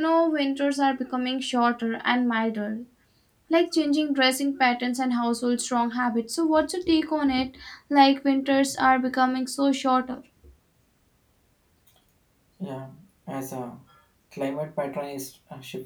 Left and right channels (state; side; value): identical; both; correlation 1.00